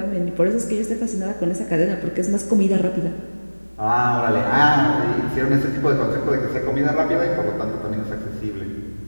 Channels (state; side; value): inverted; both; correlation -1.00